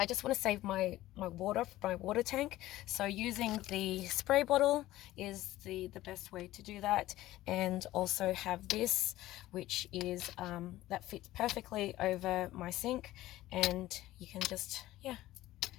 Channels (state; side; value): quieter; right; 15.9 dB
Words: just want to save my water tank. So using the spray bottle is the best way to do that. And also have this, which is that fits perfectly over my sink, and you can just, yeah,